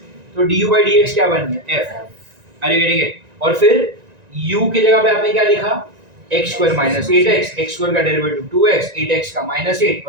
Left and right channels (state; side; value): late; left; 1.9 ms